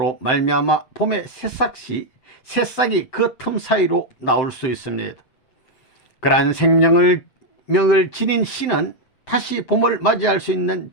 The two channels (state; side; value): late; right; 7.7 ms